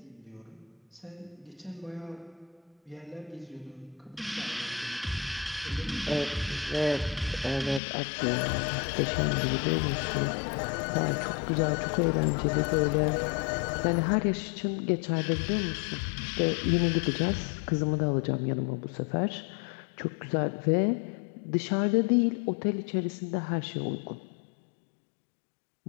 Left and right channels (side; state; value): right; drops out; at 7.8 s